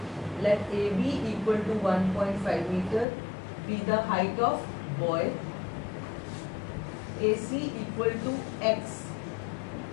Let AB equal to 1.5 meter be the height of boy. AC equal to X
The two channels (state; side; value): drops out; right; at 3.1 s